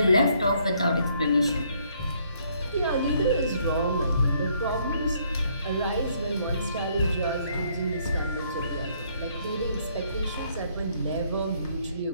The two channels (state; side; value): inverted; both; correlation -0.68